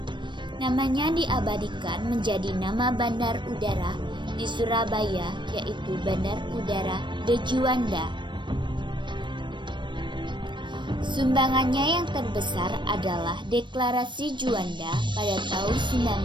Namanya diabadikan menjadi nama bandar udara di Surabaya, yaitu Bandar Udara de Juanda. Sumbangannya yang terbesar adalah Deklarasi Juanda pada tahun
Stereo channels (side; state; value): left; late; 0.22 ms